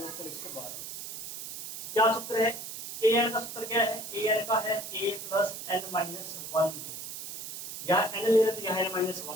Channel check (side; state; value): right; noise; hiss, 8 dB below the sound